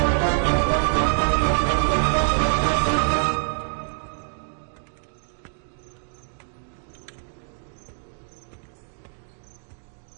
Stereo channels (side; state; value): left; silent; digital silence